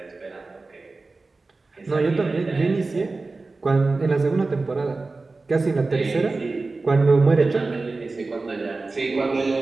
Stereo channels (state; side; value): quieter; left; 3.6 dB